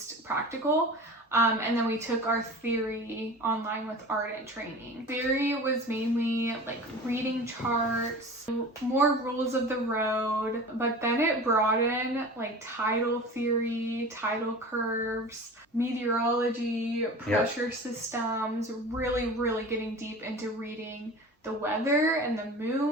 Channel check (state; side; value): normal; both; correlation 0.36